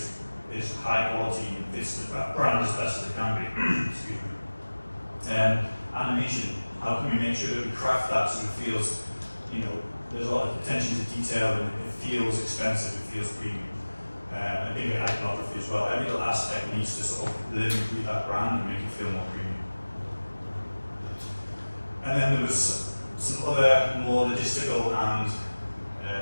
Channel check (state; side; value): inverted; both; correlation -1.00